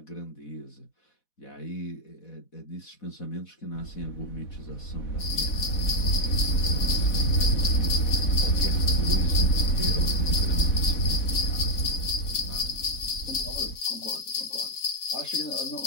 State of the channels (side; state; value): right; late; 4.1 ms